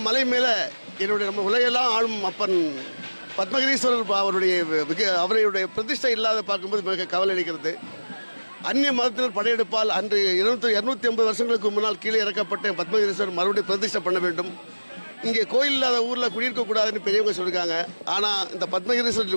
மலை மேலே என்னுடைய நம்ம உலகெல்லாம் ஆளும் அப்பன் பத்மகிரீஸ்வரர் அவருடைய பிரதிஷ்டை இல்லாத பார்க்கும்போது மிக கவலை அளிக்கிறது. அந்நிய மதத்தினர் படையெடுப்பால் அன்று 250 வருஷங்களுக்கு முன்னால் கீழே இறக்கப்பட்ட பத்மகிரீஸ்வரர் மறுபடியும் பிரதிஷ்டை பண்ண வேண்டும். இங்கே கோயில் இல்லாத ஊரில் குடியிருக்கக்கூடாதுன்னு பெரியவங்க சொல்லியிருக்காங்க. ஆனால் இந்த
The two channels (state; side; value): inverted; both; correlation -1.00